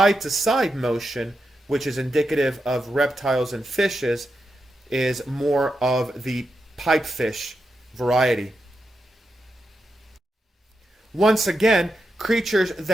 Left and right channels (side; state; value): both; normal; correlation 0.87